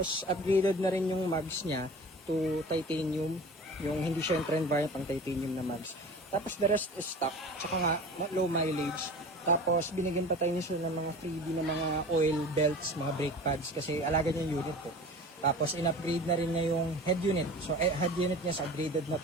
upgraded na rin yung mags niya to titanium. Yung hindi siya yung trend variant pang titanium na mags. Tapos the rest is stock. Tsaka nga low mileage. Tapos binigyan pa tayo niya ng mga freebie na mga oil belts, mga brake pads kasi alaga niya yung unit ko. Tapos in-upgrade na rin niya yung head unit. So head unit niya is upgraded na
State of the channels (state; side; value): normal; both; correlation 0.38